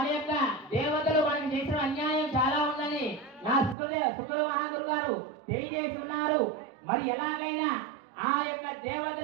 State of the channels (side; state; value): left; drops out; at 3.8 s